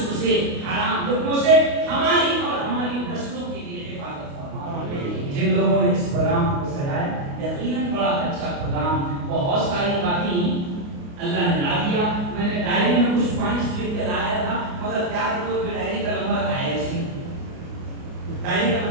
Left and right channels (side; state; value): left; late; 29 ms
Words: سے، حرام لقموں سے ہماری اور ہماری نسلوں کے لیے حفاظت فرما، جن لوگوں نے اس پروگرام کو سجایا یقیناً بڑا اچھا پروگرام، بہت ساری باتیں اللہ نے لا دیا، میں نے ڈائری میں کچھ پوائنٹس لکھ کے لایا تھا مگر کیا کروں کہ ڈائری کا نمبر آیا ہی، ڈائری کا